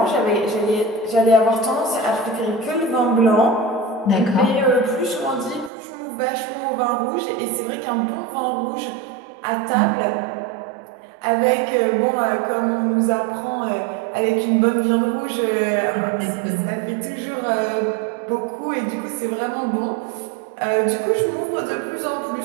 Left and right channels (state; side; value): drops out; left; at 5.7 s